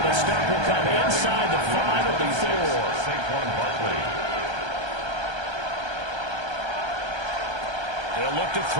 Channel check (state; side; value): late; left; 1.3 ms